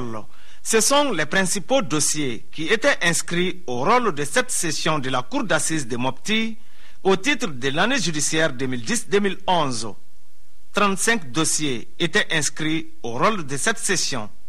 Ce sont les principaux dossiers qui étaient inscrits au rôle de cette session de la Cour d'assises de Mopti au titre de l'année judiciaire 2010-2011. 35 dossiers étaient inscrits au rôle de cette session.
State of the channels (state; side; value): identical; both; correlation 1.00